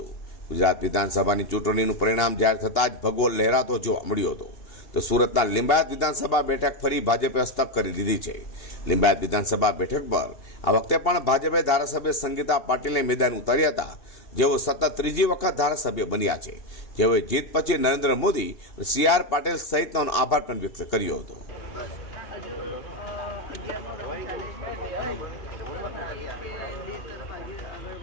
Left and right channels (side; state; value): right; late; 2.8 ms